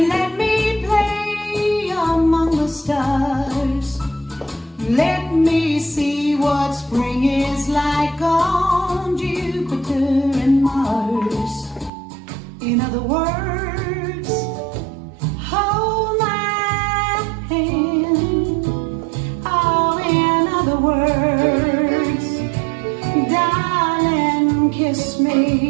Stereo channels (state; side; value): drops out; left; at 11.9 s